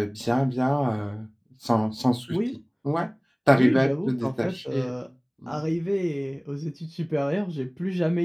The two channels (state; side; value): identical; both; correlation 1.00